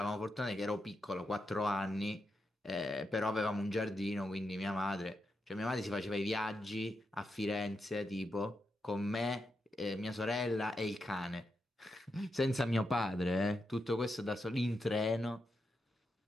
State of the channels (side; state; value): both; normal; correlation 0.85